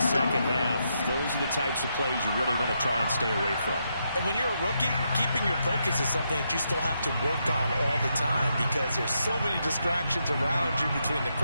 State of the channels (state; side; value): inverted; both; correlation -0.81